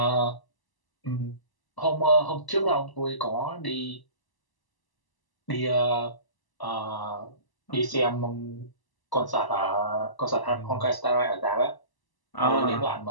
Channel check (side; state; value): right; late; 1.0 ms